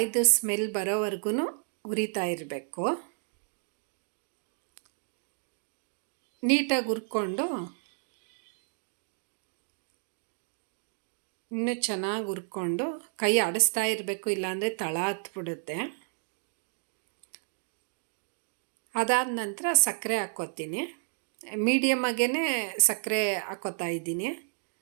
ಸ್ಮೆಲ್ ಬರೋವರೆಗೂ ಹುರಿತಾ ಇರಬೇಕು. ನೀಟಾಗಿ ಹುರ್ಕೊಂಡು ಇನ್ನೂ ಚೆನ್ನಾಗಿ ಹುರ್ಕೊಂಡು ಕೈ ಆಡಿಸ್ತಾ ಇರಬೇಕು, ಇಲ್ಲಾಂದರೆ ತಳ ಹತ್ಬಿಡುತ್ತೆ. ಅದಾದ ನಂತರ ಸಕ್ಕರೆ ಹಾಕ್ಕೋತೀನಿ. ಮೀಡಿಯಮಾಗೇ ಸಕ್ಕರೆ ಹಾಕ್ಕೋತಾ ಇದ್ದೀನಿ.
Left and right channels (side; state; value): left; silent; 57 dB below the other